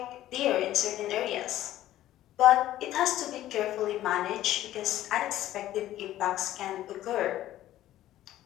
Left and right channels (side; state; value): right; quieter; 13.8 dB